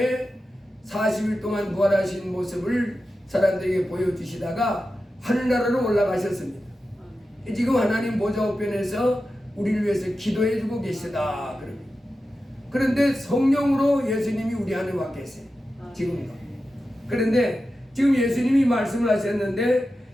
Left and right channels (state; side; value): normal; both; correlation 0.92